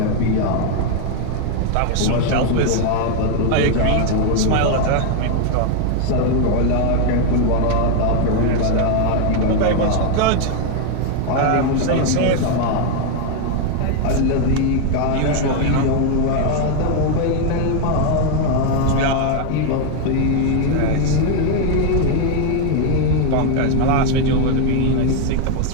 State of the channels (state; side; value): different; both; correlation 0.00